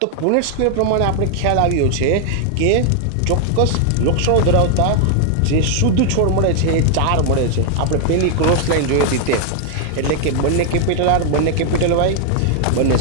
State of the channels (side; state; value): both; different; correlation 0.00